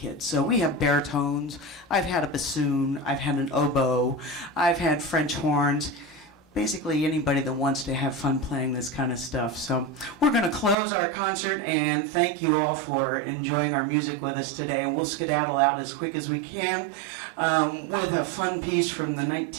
So we have baritones, I've had a bassoon, I've had an oboe, I've had French horns. Basically anybody that wants to have fun playing this kind of stuff. So we're going to close our concert and thank you all for enjoying our music with us today. And we'll skedaddle out as quick as we can with a fun piece from the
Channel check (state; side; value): drops out; left; at 10.8 s